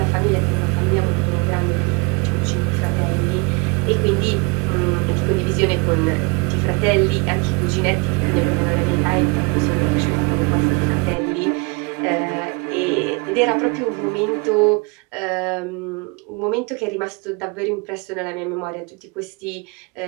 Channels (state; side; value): quieter; left; 29.3 dB